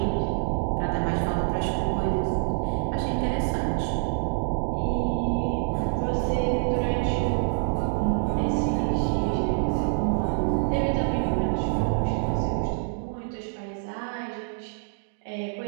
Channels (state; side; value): silent; left; digital silence